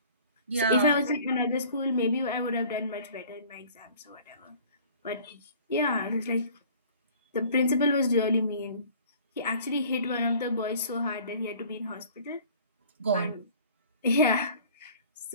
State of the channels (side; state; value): both; inverted; correlation -0.50